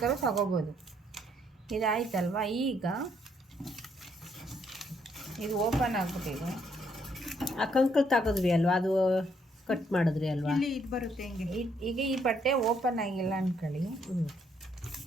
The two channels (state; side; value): normal; both; correlation 0.71